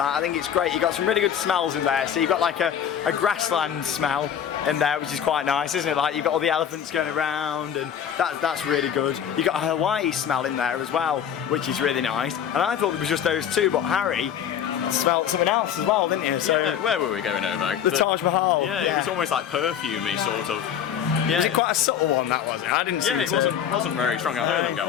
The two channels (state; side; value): quieter; right; 9.0 dB